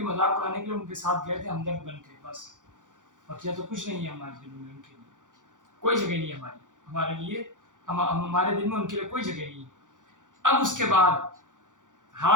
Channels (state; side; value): late; left; 0.87 ms